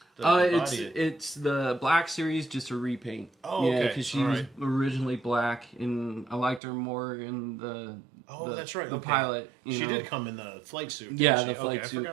It's the Black series, just a repaint. Oh, yeah, okay. because she was originally black, and I liked her more in the That's right. the okay. pilot. She You know? did come in the flight suit. Yeah, didn't the she? flight okay, suit. I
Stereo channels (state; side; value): drops out; left; at 6.6 s